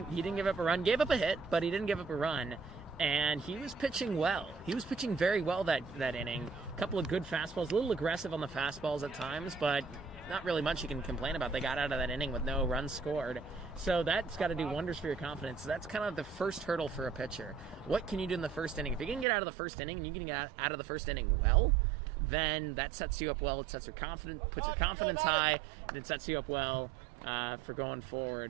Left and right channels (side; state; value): left; drops out; at 19.2 s